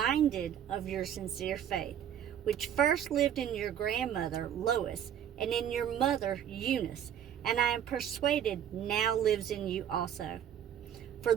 of your sincere faith, which first lived in your grandmother Lois and in your mother Eunice, and I am persuaded now lives in you also. For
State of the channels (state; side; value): quieter; left; 9.5 dB